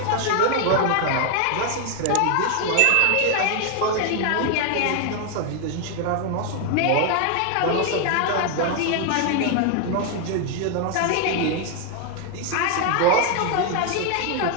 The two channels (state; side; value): different; both; correlation 0.00